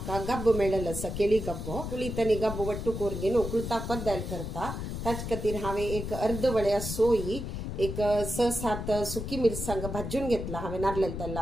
गब्ब मेळ्ळलो आसा, केळी गब्ब कुळीतनी गब्ब वट्टू कोरगेन उकळता कोद्दायल करता। ताचे खातीर हांवें एक अर्द वळ्या सोयी, एक 6-7 सुकी मिरसांग भाजून घेतला हांवें नारळेल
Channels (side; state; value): left; noise; rumble, 5 dB below the sound